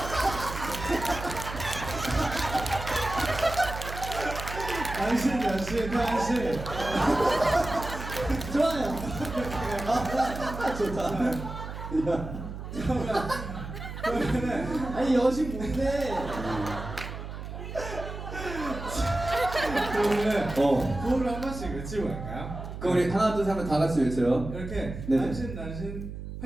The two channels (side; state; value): right; noise; hum, 9 dB below the sound